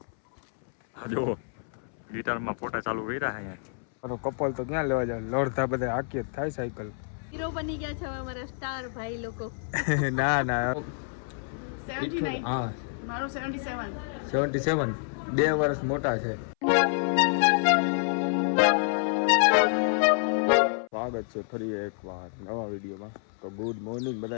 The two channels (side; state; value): right; silent; 59 dB below the other